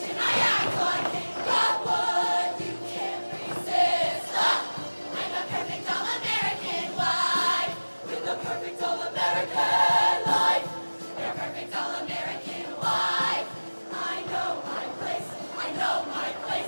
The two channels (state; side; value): inverted; both; correlation -1.00